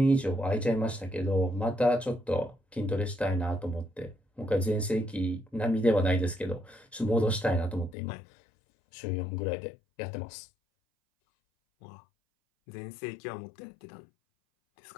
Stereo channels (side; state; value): right; drops out; at 8.0 s